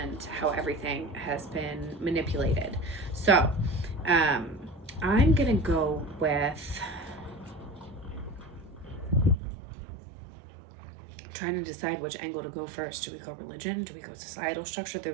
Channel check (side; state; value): left; drops out; at 9.3 s